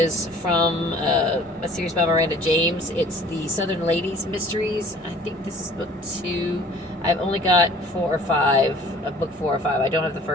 from a series by Miranda James. It's the Southern Ladies Mysteries. I think this is book 2. I've only got 4 or 5, book 4 or 5. I don't have the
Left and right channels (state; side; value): normal; both; correlation 0.51